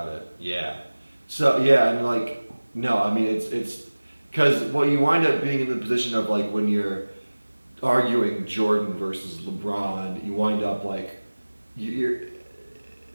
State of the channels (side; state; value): both; inverted; correlation -1.00